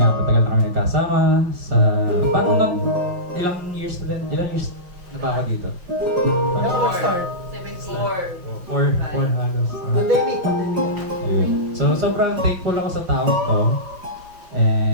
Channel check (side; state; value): left; late; 5.6 ms